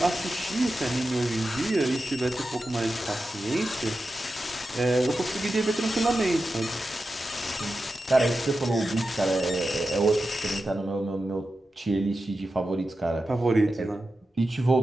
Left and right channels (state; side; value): normal; both; correlation 0.91